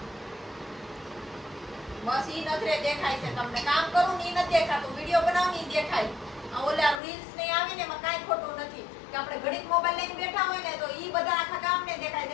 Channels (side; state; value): right; drops out; at 7.0 s